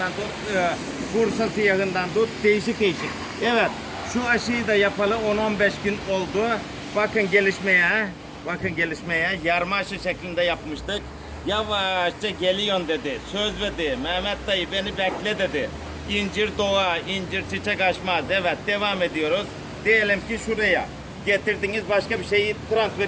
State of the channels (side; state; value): both; identical; correlation 1.00